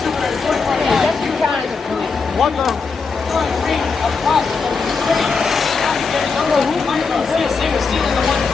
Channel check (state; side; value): quieter; right; 4.8 dB